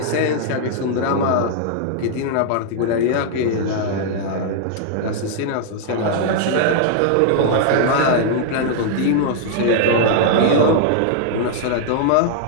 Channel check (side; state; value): both; different; correlation -0.01